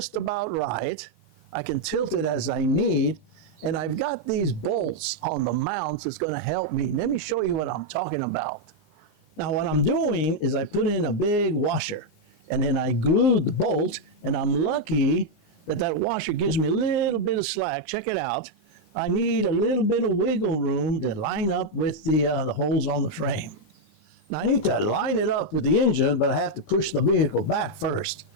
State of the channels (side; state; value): right; late; 19 ms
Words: about right. I can tilt it as I need, and I've got these bolts on the mounts that's going to help me. Let me show you what I'm talking about. Now, what I'm doing is I put in a big washer, and then I glued the bolt, and I'm lucky that that washer gives me a little bit of slack. Check it out. I need a little bit of wiggle room to line up with the holes on the frame. Now, I need to line it up with the engine, but I have to push the vehicle back first.